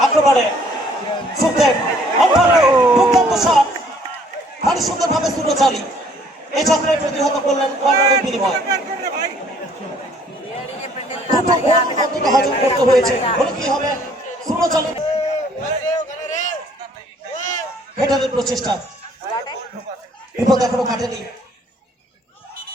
আক্রমণে সুখদেব দুর্দান্ত শট, ভারী সুন্দর ভাবে সুরচালি এই চক্রে প্রতিহত করলেন কর্নারের বিনিময়। হজম করতে হয়েছে। বলে কি হবে? সুরচালি হেডারের প্রচেষ্টা, বিপদ এখনো কাটেনি।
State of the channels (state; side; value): normal; both; correlation 0.60